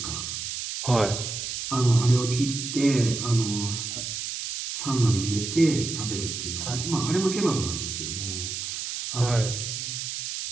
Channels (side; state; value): right; noise; hiss, 5 dB below the sound